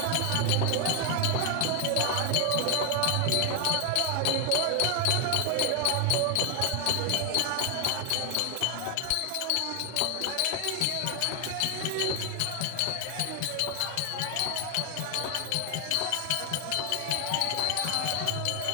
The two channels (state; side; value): different; both; correlation 0.00